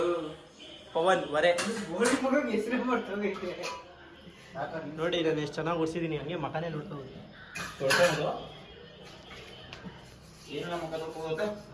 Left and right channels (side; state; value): both; identical; correlation 1.00